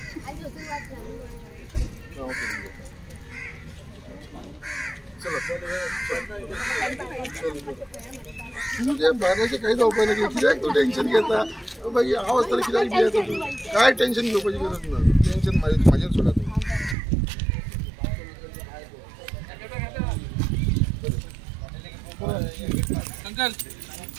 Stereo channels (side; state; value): left; drops out; at 16.9 s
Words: म्हणजे बाहेरचे काही जावपाक ना कित्याक तूं टेन्शन घेता बाई हांव आसतना कित्याक भियेता तूं काय टेन्शन घेवपाची गरज ना टेन्शन म्हाजेर सोडा तूं अंकल